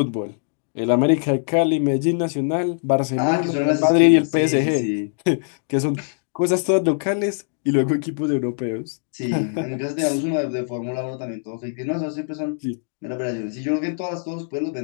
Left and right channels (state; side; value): silent; right; digital silence